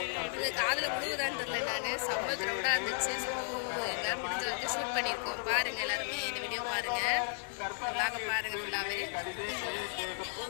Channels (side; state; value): right; silent; digital silence